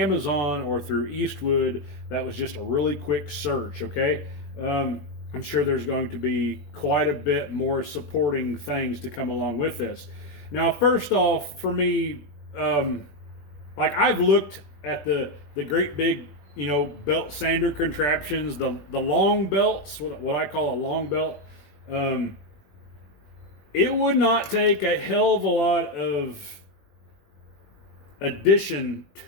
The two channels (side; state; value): right; late; 20 ms